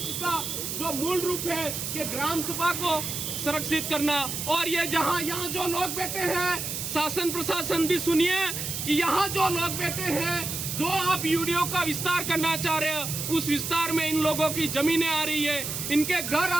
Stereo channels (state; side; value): noise; right; hiss, 4 dB below the sound